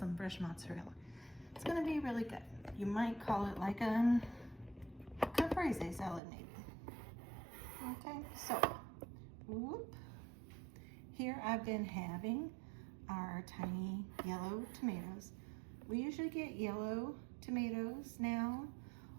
fresh mozzarella. It's going to be really good. You might call it like a caprese salad maybe. Okay, so here I've been having our tiny yellow tomatoes. We usually get yellow tomatoes now.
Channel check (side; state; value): left; drops out; at 6.2 s